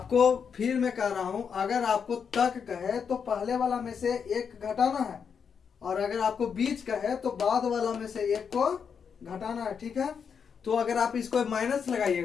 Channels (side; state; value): right; quieter; 6.7 dB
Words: फिर मैं कह रहा हूं, अगर आपको तक कहे तो पहले वाला में से 1 घटाना है, और अगर आपको बीच कहे तो बाद वाला में से 1 को घटाना है। ठीक है, तो अगर आप इसको माइनस